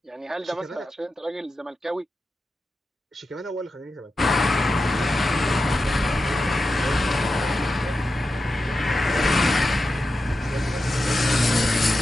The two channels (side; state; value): both; normal; correlation 0.90